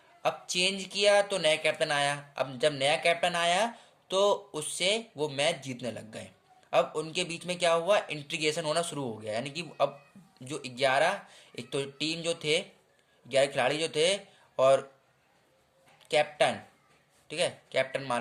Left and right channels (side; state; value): both; identical; correlation 1.00